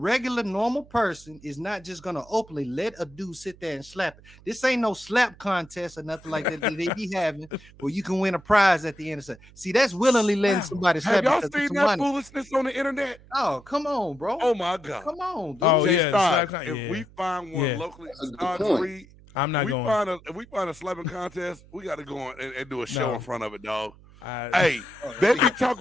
normal person is not just gonna openly let a dude sit there and slap it. This ain't no slap contest or nothing like that they be having where you can win a prize at the end of it. See, that's willingly letting somebody slap. Have y'all seen that foolishness on the internet? Oh, come on, bro. Oh my God. Come on, dude. Oh, if we find one locally, I'm not going. If we find a slapping contest, we got to go on and do a show in front of it, dog. Hey, they be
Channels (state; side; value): noise; right; hum, 23 dB below the sound